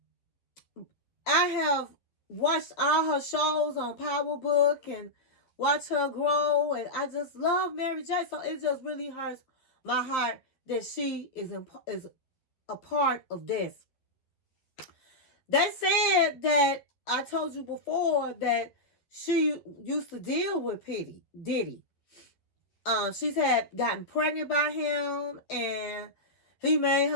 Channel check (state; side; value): late; right; 12 ms